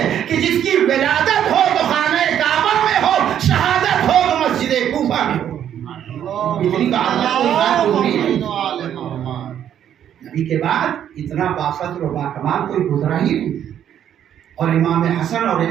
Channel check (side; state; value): left; quieter; 9.9 dB